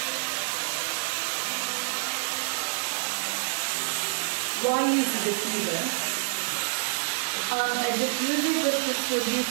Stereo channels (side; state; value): left; silent; digital silence